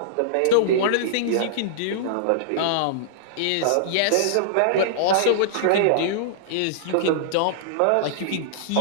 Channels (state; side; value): different; both; correlation -0.02